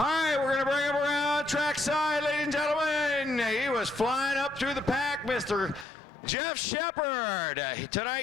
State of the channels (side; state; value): right; drops out; at 5.9 s